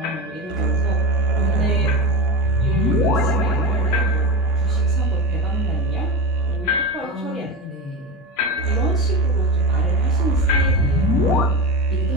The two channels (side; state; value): both; normal; correlation 0.22